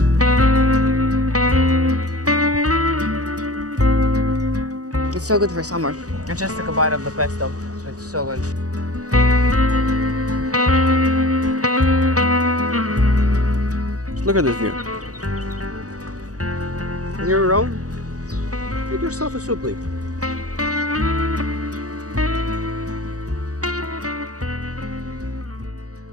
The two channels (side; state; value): left; late; 0.67 ms